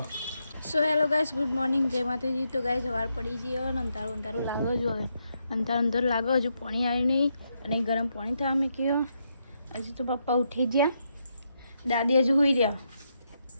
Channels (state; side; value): inverted; both; correlation -0.81